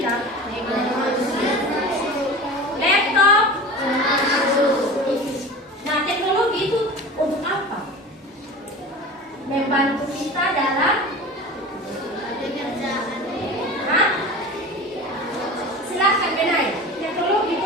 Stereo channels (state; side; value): normal; both; correlation 0.34